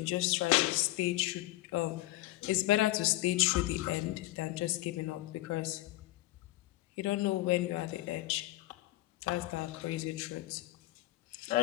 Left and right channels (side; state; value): right; quieter; 17.4 dB